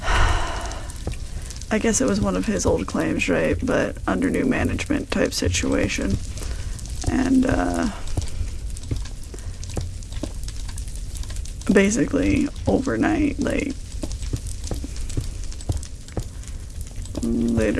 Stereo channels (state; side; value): identical; both; correlation 1.00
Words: I guess it was one of his old claims, right? But under new management type situation. And, basically, overnight, like,